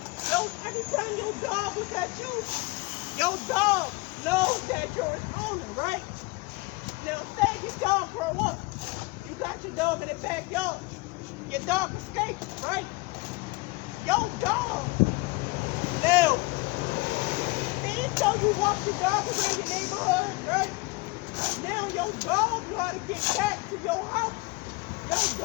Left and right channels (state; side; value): quieter; right; 24.0 dB